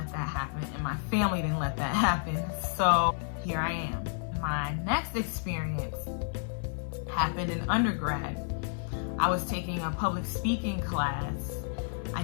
that happen, and my family didn't let that happen. So here I am. My next experience happened in undergrad. I was taking a public speaking class. I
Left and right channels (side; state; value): right; silent; digital silence